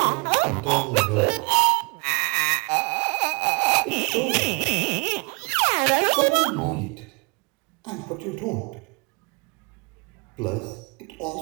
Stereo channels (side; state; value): left; quieter; 30.1 dB